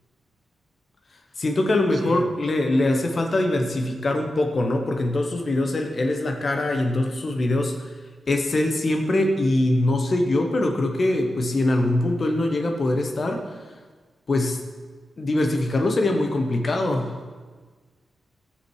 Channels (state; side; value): normal; both; correlation 0.91